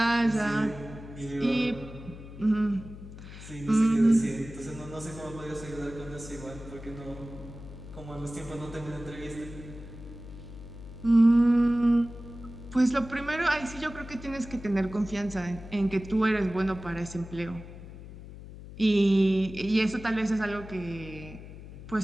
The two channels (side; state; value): left; noise; hum, 14 dB below the sound